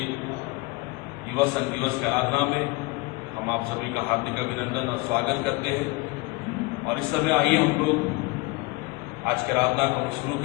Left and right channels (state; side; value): quieter; right; 23.7 dB